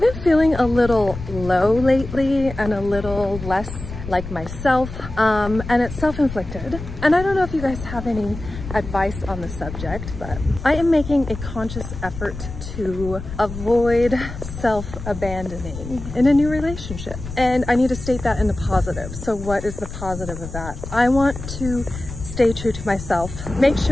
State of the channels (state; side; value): noise; left; rumble, 10 dB below the sound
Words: been feeling a little low lately and a little less like myself, and it's self-inflicted. And I don't know if you guys have any advice on the subject, but I am making a conscious effort to avoid self-abandoning in a new relationship. And I need to state that in the positive. So what is the positive of that? I want to stay true to myself, make